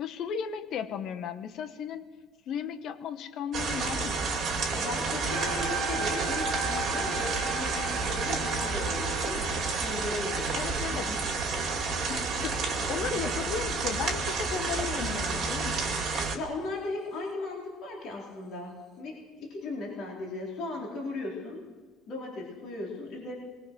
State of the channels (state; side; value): normal; both; correlation 0.53